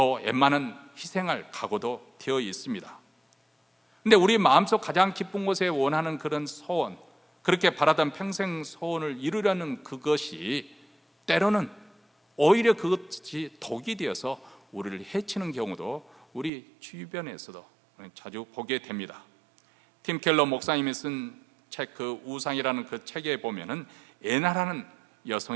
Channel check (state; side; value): drops out; left; at 16.5 s